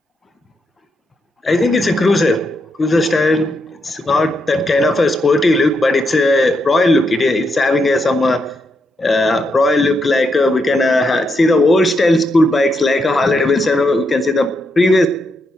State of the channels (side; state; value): both; normal; correlation 0.81